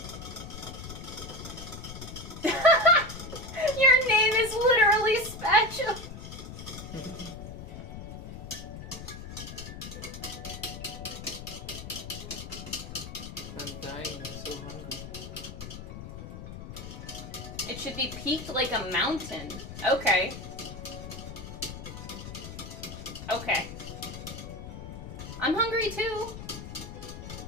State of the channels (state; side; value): noise; left; rumble, 10 dB below the sound